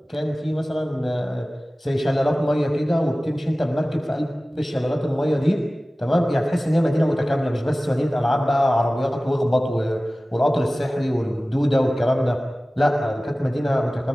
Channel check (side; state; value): both; normal; correlation 0.97